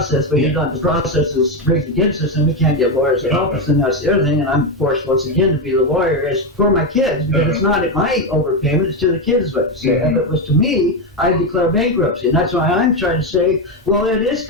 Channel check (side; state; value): both; normal; correlation 0.10